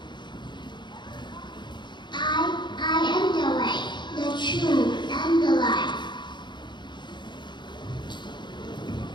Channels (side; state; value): right; late; 0.22 ms